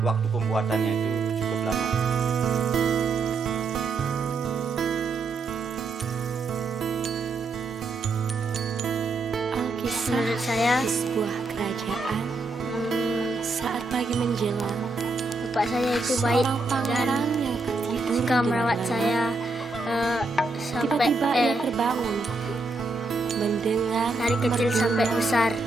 waktu pembuatannya itu cukup lama. Menurut saya, sebuah kerajaan saat pagi menjelang, bapak saya itu baik dan suka merawat saya sampai tiba-tiba ia terbangun mendengar dari kecil sampai besar,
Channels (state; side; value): quieter; left; 3.4 dB